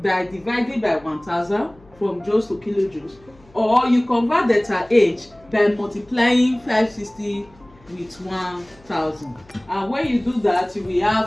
dividing by 1000 from joules to kilojoules, or you convert delta H by multiplying 560 with 1000. And when you do that, you will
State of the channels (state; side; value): noise; left; hum, 28 dB below the sound